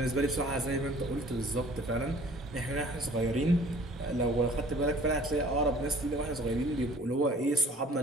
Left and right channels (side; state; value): both; normal; correlation 0.52